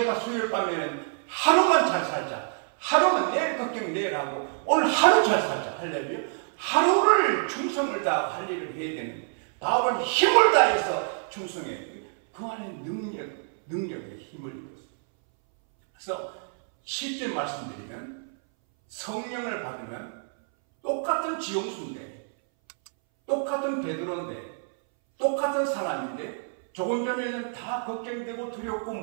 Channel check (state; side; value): silent; left; 60 dB below the other